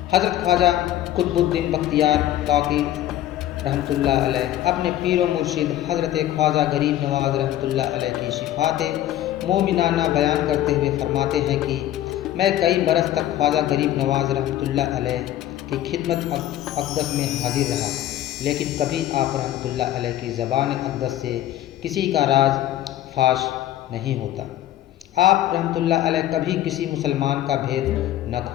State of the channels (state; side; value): quieter; right; 12.9 dB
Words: حضرت خواجہ قطب الدین بختیار کاکی رحمۃ اللہ علیہ اپنے پیر و مرشد حضرت خواجہ غریب نواز رحمۃ اللہ علیہ کی صفات مومنانہ بیان کرتے ہوئے فرماتے ہیں کہ میں کئی برس تک خواجہ غریب نواز رحمۃ اللہ علیہ کی خدمت اقدس میں حاضر رہا، لیکن کبھی آپ رحمۃ اللہ علیہ کی زبان اقدس سے کسی کا راز فاش نہیں ہوتا۔ آپ رحمۃ اللہ علیہ کبھی کسی مسلمان کا بھید نہ